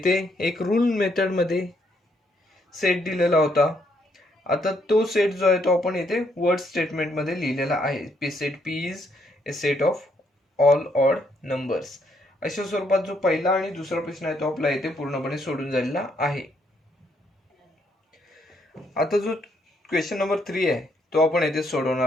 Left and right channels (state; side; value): normal; both; correlation 0.73